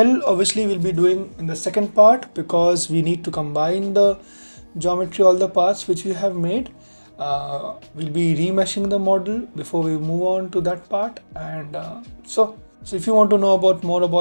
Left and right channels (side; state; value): both; inverted; correlation -1.00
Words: obviously we'll be doing in the second part, because we need to combine the geometry, all the parts which we have made. We'll be remeshing the model before we move on to that part. And so if you want to know more